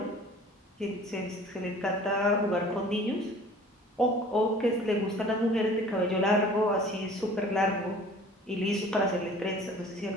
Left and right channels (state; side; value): normal; both; correlation 0.47